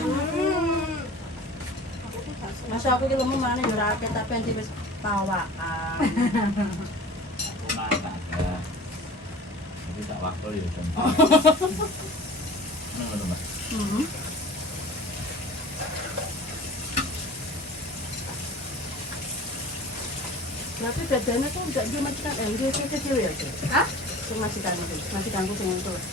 masa aku ki lemu mana yo ora akeh tapi anti wis pawakan. Aku mata ya. Tapi tak waktu ya kan. Ngono Mas. Berarti bedanya tuh enggak dia majikan dia kecil ya. Hah? Majikanku sing itu.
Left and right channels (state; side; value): normal; both; correlation 0.41